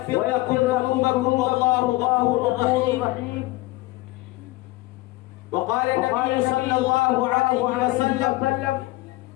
لكم ذنوبكم والله غفور رحيم. وقال النبي صلى الله عليه وسلم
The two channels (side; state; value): right; quieter; 19.6 dB